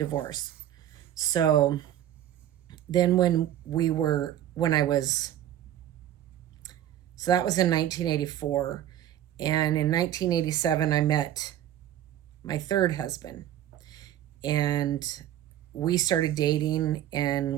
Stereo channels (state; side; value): quieter; left; 11.8 dB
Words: So then so that was in 1984. And in 1987, I met my third husband. And we started dating,